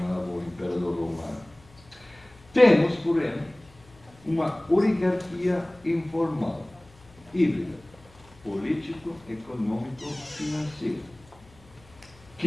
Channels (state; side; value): noise; left; hum, 26 dB below the sound